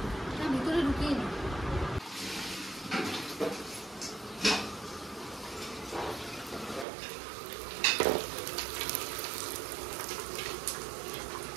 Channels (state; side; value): drops out; left; at 6.9 s